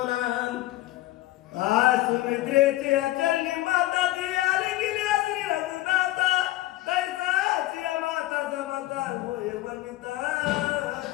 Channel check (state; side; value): quieter; right; 16.7 dB